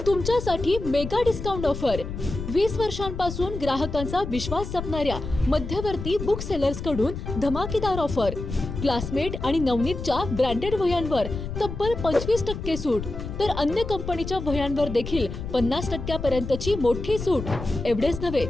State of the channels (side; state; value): left; noise; rumble, 7 dB below the sound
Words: तुमच्यासाठी मेगा डिस्काउंट ऑफर. 20 वर्षांपासून ग्राहकांचा विश्वास जपणाऱ्या मध्यवर्ती बुक सेलर्स कडून धमाकेदार ऑफर. क्लासमेट आणि नवनीतच्या ब्रँडेड वह्यांवर तब्बल 25% सूट, तर अन्य कंपनीच्या वह्यांवर देखील 50% पर्यंतची मोठी सूट. एवढेच नव्हे